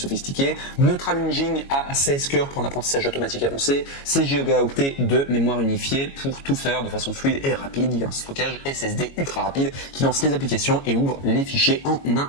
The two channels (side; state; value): right; late; 22 ms